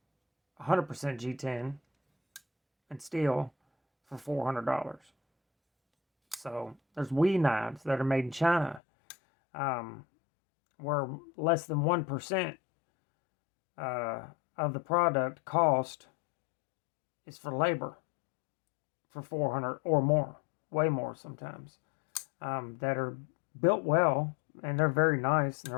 G10 and steel for $400. So there's WE knives that are made in China, where less than 1% of the product cost is for labor for 400 or more, way more sometimes, that are built well, and they're very nice and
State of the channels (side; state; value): right; drops out; at 8.8 s